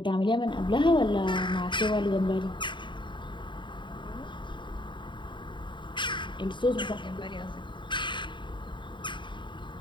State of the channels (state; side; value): late; right; 0.23 ms